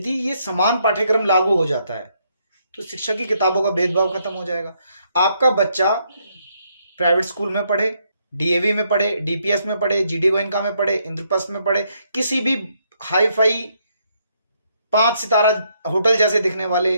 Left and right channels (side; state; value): both; inverted; correlation -0.73